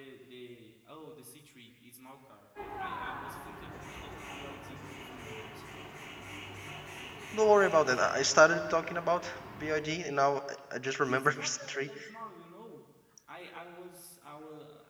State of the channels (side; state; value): both; identical; correlation 1.00